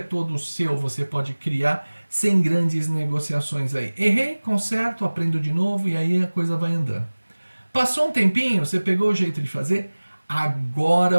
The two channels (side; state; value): both; inverted; correlation -1.00